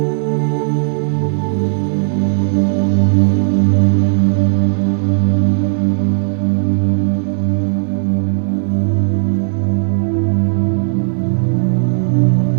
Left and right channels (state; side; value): silent; left; 66 dB below the other